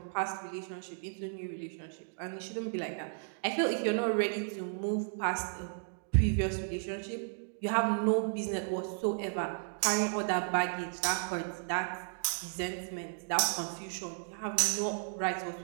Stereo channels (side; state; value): left; silent; digital silence